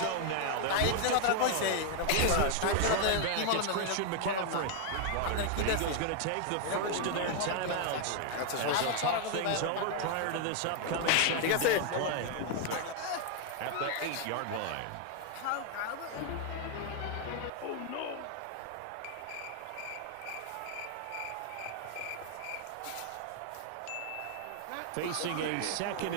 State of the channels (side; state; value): both; different; correlation 0.00